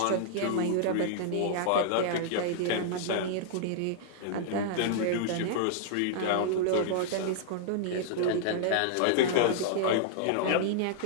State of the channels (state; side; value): different; both; correlation -0.01